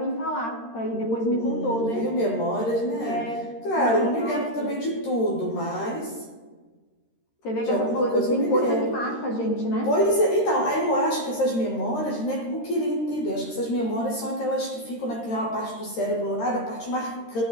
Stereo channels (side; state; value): right; late; 13 ms